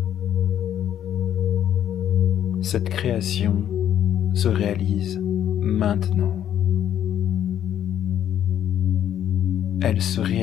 Cette création se réalise maintenant. Elle se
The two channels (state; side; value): quieter; right; 10.3 dB